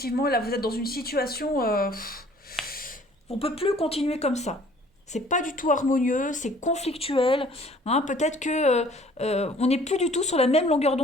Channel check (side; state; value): both; normal; correlation 0.54